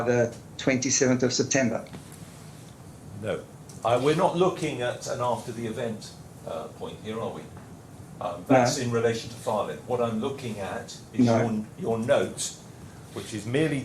the 27th of September. No, we're not looking at an after the event point here, are we? That's in relation to filing. What I'm looking at is your note, which is merely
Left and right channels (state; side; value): identical; both; correlation 1.00